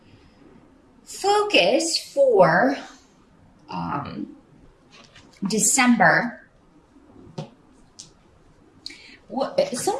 Focus for December.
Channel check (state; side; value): identical; both; correlation 1.00